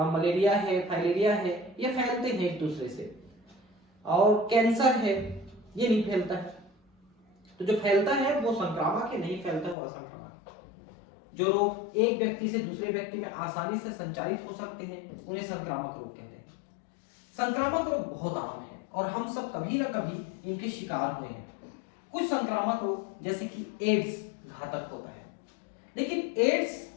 मलेरिया है, फाइलेरिया है, ये फैलते हैं एक दूसरे से। और कैंसर है, ये नहीं फैलता है। तो जो फैलता है वो संक्रामक है, नहीं फैलता वो असंक्रामक। जो रोग एक व्यक्ति से दूसरे व्यक्ति में आसानी से संचारित हो सकते हैं उन्हें संक्रामक रोग कहते हैं। संक्रामक रोग बहुत आम है और हम सब कभी ना कभी इनके शिकार हुए हैं। कुछ संक्रामक रोग जैसे कि एड्स घातक होता है, लेकिन एड्स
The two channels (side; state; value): right; drops out; at 9.8 s